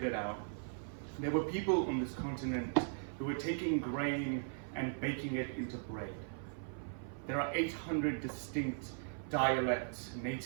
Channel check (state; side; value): silent; left; 52 dB below the other